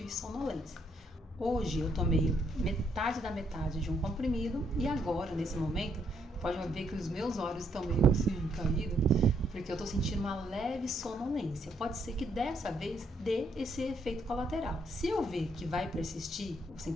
sonolência. Hoje eu tomei metade da metade de um comprimido e agora, nesse momento, pode ver que os meus olhos estão meio assim caídos, porque eu tô sentindo uma leve sonolência. Pode ser que dessa vez dê esse efeito colateral. Se eu ver que vai persistir o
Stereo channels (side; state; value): both; normal; correlation 0.72